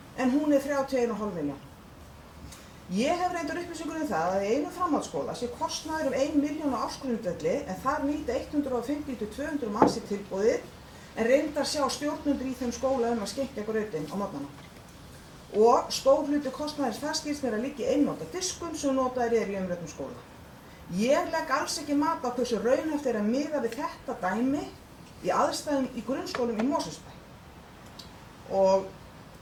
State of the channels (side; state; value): both; identical; correlation 1.00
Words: en hún 31,5 milljón. Ég hef reyndar upplýsingur það að í einu framhaldsskóla sé kostnaður 1 milljón á ársgrundvelli, en þar nýta 150 til 200 manns í tilboðið, en reyndar sjá stjórnendur í þeim skóla að skenkja grautinn á morgnana. Og stór hluti kostnaðins þar skilst mér að liggja í einnota diskum sem notaðir í umræddum skóla. Ég legg alls ekki mat á hversu raunhæft að miða við þetta dæmi í aðstæðum í grunnskólum í Mosfellsbæ. Og